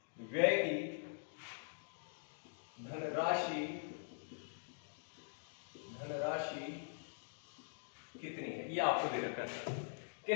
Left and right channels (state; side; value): silent; right; digital silence